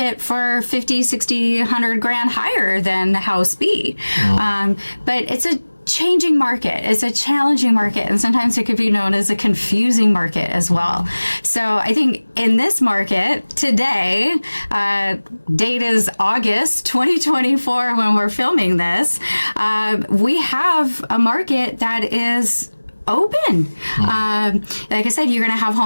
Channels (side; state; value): both; inverted; correlation -1.00